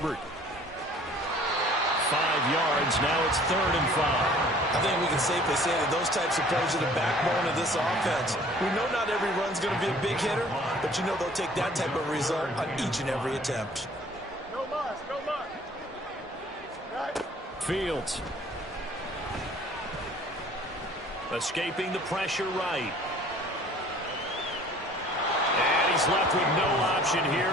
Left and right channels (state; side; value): normal; both; correlation 0.52